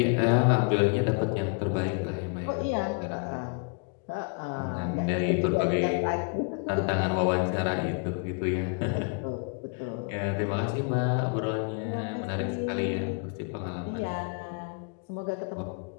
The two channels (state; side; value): quieter; right; 36.1 dB